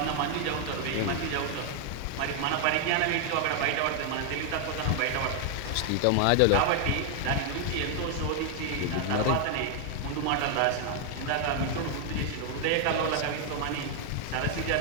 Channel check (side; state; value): both; different; correlation 0.00